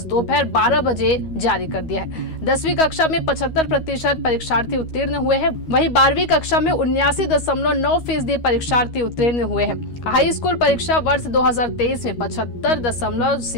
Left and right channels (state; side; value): late; right; 13 ms